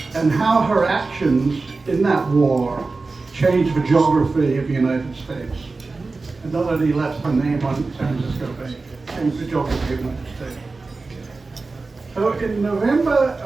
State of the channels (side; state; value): left; quieter; 3.8 dB